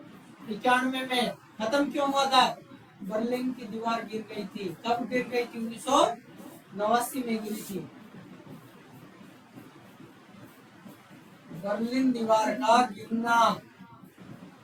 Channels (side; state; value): both; identical; correlation 1.00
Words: में। खत्म क्यों हुआ था? बर्लिन की दीवार गिर गई थी। कब गिर गई थी? 1989 में गिरी थी। बर्लिन दीवार का गिरना